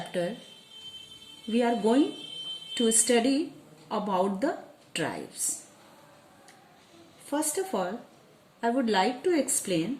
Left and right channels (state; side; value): identical; both; correlation 1.00